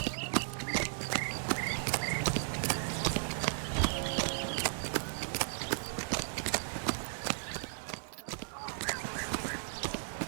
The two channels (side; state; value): left; silent; digital silence